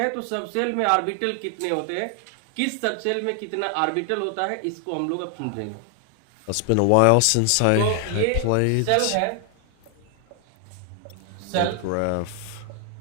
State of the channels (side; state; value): both; different; correlation 0.00